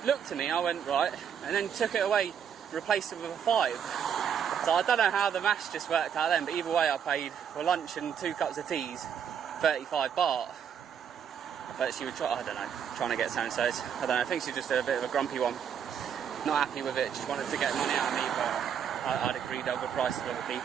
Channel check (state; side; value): quieter; left; 8.1 dB